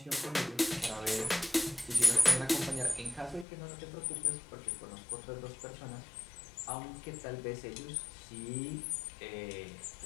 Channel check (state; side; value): drops out; right; at 3.5 s